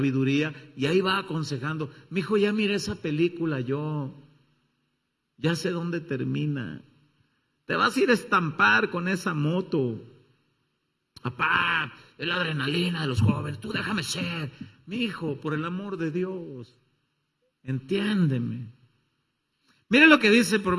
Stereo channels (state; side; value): identical; both; correlation 1.00